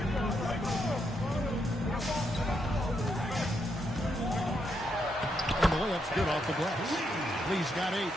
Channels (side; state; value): both; normal; correlation 0.79